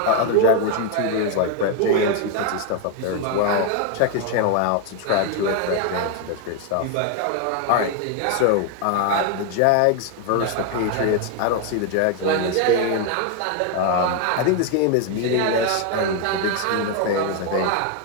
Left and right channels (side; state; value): both; different; correlation 0.01